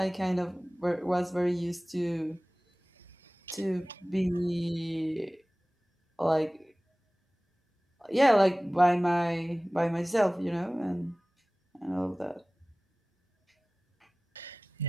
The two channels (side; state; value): both; normal; correlation 0.98